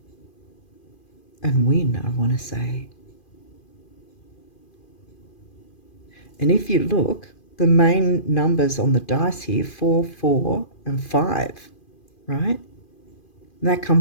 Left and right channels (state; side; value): late; right; 2.4 ms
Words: and win, I want to say. And if you look, the main numbers on the dice here, 4, 4, and 5, right? And that